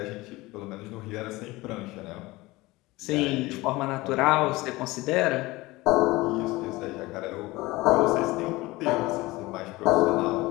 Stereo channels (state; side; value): quieter; right; 20.6 dB